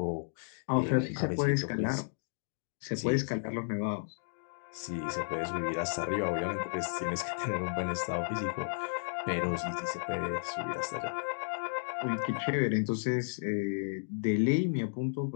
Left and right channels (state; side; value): silent; right; digital silence